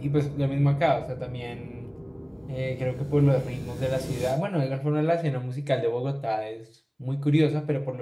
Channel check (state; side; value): identical; both; correlation 1.00